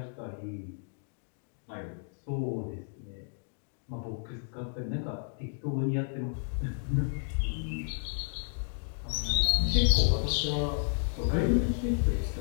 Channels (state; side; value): silent; right; digital silence